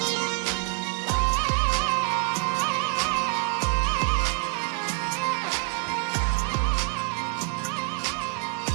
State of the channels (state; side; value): quieter; left; 32.8 dB